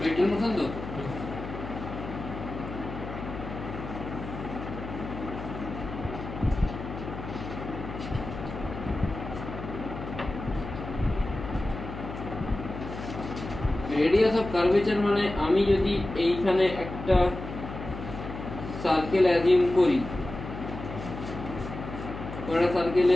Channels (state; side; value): noise; left; hum, 9 dB below the sound